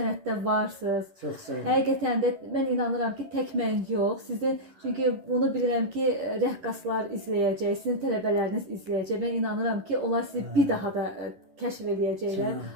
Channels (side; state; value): left; late; 11 ms